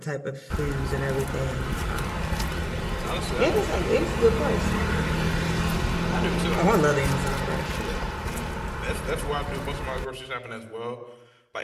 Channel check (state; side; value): identical; both; correlation 1.00